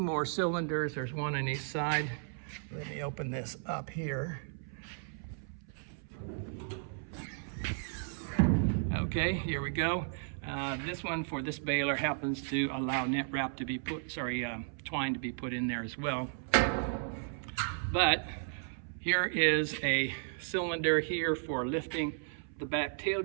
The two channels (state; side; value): silent; left; 55 dB below the other